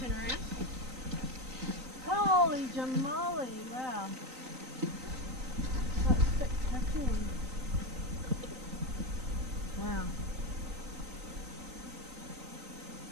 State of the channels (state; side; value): late; left; 3.9 ms